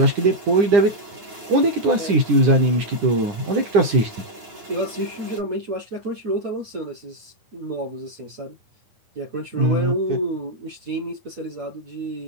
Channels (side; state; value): left; late; 9.9 ms